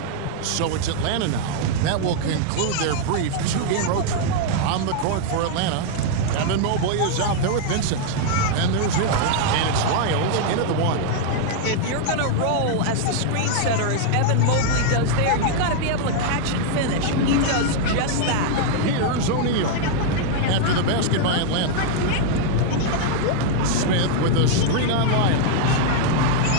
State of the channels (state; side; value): different; both; correlation 0.00